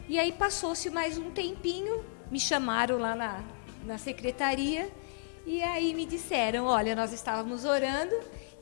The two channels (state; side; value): silent; right; digital silence